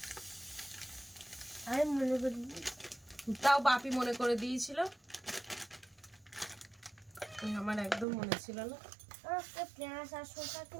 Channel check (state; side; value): drops out; left; at 8.1 s